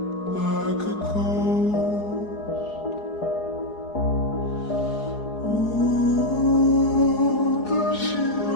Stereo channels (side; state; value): right; late; 4.8 ms